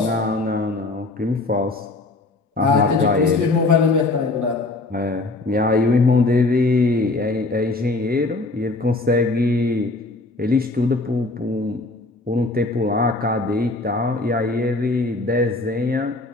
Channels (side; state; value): right; quieter; 3.1 dB